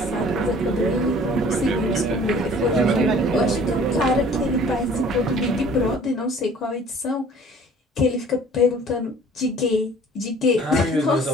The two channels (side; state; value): both; normal; correlation 0.51